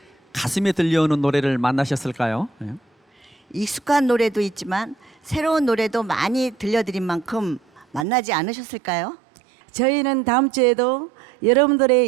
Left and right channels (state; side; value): drops out; left; at 8.1 s